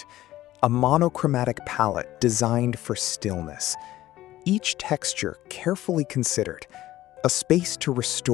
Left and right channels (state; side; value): quieter; right; 15.0 dB